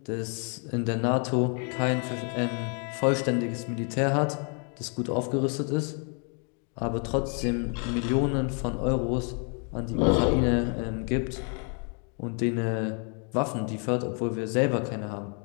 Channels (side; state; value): right; quieter; 39.2 dB